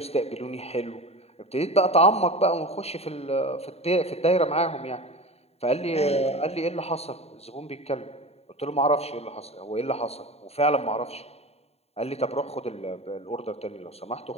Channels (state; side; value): late; right; 0.30 ms